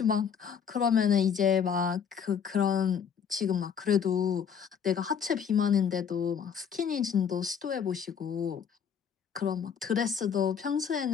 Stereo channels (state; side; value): quieter; right; 7.4 dB